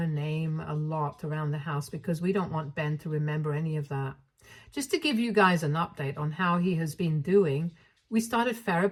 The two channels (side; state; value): both; identical; correlation 1.00